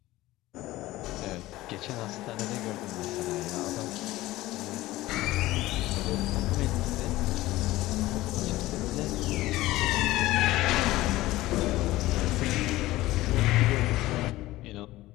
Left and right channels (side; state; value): right; quieter; 17.4 dB